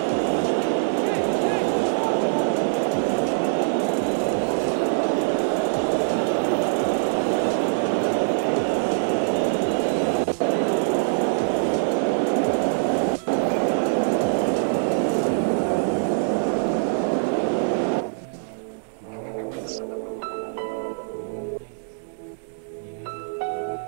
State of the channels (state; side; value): silent; left; digital silence